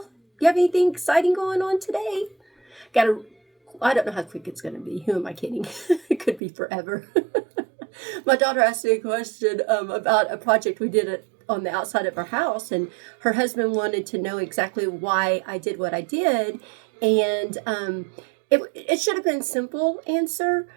You have anything exciting going on today? I don't know how quick it's going to be. Who am I kidding? It could be forever. My daughter asked me a question about a project we did on the outside of our house, and her husband wanted to know exactly why I did what I did. And it should have been a simple answer,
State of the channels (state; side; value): drops out; left; at 6.4 s